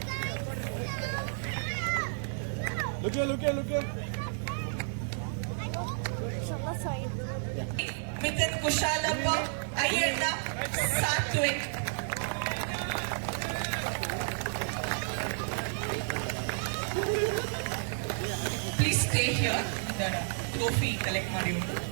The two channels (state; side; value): silent; left; 57 dB below the other